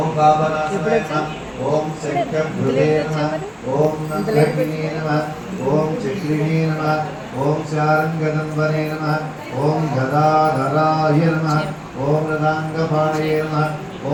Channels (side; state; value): both; identical; correlation 1.00